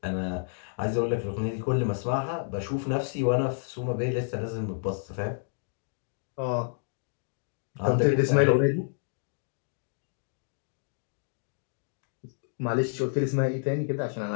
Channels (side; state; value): right; silent; digital silence